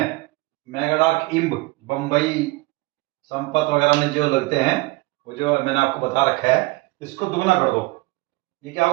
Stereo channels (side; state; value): left; quieter; 22.3 dB